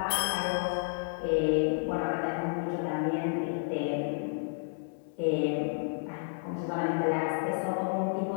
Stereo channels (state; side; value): silent; right; 57 dB below the other